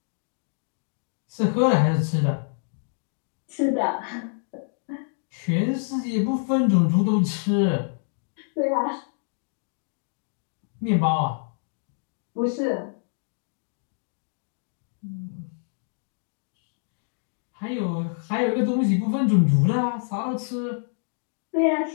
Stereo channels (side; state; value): right; silent; digital silence